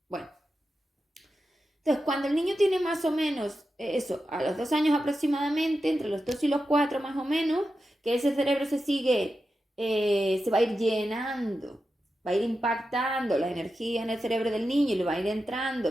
Bueno. Entonces, cuando el niño tiene más o menos eso, a los 2 años aproximadamente, entre los 2 y los 4 más o menos, que ese cerebro se va a ir llenando, va a ir impactando la energía en el cerebro del niño y le va a ir entrando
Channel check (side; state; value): both; normal; correlation 0.90